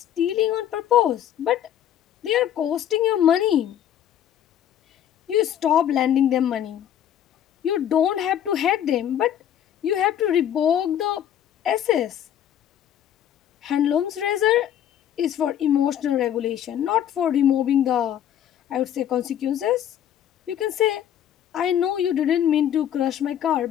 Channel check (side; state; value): right; quieter; 10.3 dB